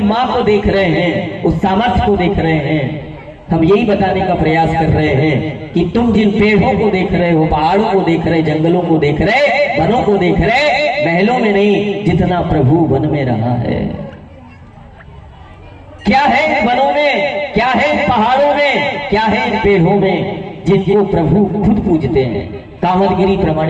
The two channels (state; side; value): identical; both; correlation 1.00